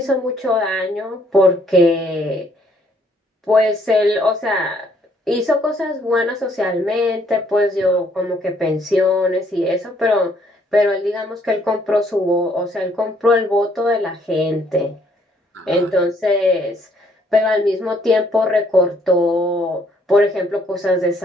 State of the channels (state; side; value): normal; both; correlation 0.66